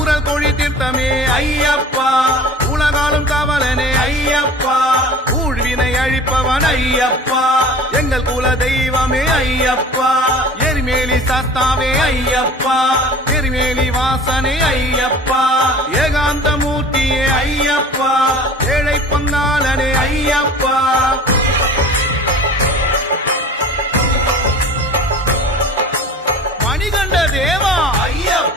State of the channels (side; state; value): both; normal; correlation 0.42